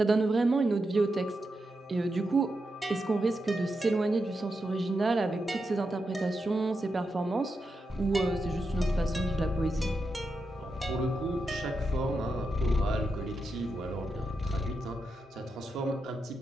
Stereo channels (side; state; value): both; normal; correlation 0.87